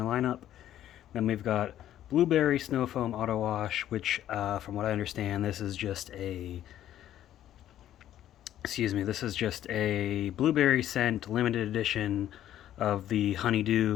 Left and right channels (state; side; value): quieter; right; 11.9 dB